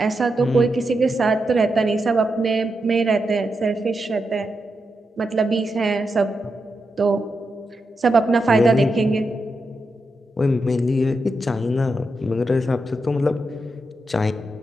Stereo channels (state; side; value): normal; both; correlation 0.86